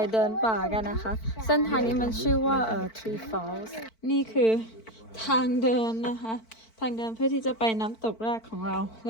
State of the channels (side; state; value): right; late; 4.5 ms